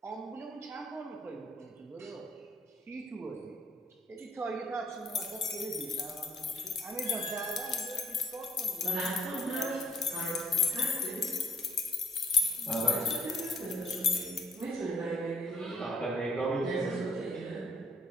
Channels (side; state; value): both; normal; correlation 0.64